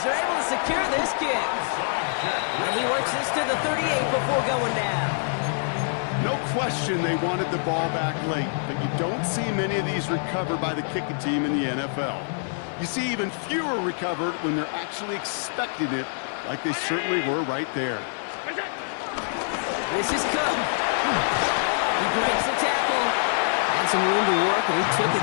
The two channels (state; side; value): silent; right; 61 dB below the other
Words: are able to secure this kick. And he works this to the 38 before going down. No question they wanted the ball back late, but you don't see many of these recovered by the kicking team in the NFL. You see even fewer recovered when they're actually expecting it, like they certainly were right there. This is Cook. He breaks the tackle. Had some room to work, and he took